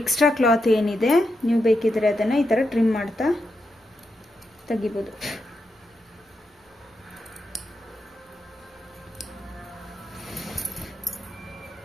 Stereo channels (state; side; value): normal; both; correlation 0.85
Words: ಎಕ್ಸ್ಟ್ರಾ ಕ್ಲಾತ್ ಏನಿದೆ ನೀವು ಬೇಕಿದ್ರೆ ಅದನ್ನು ಈ ಥರ ಟ್ರಿಮ್ ಮಾಡ್ತಾ ತೆಗಿಬೋದು.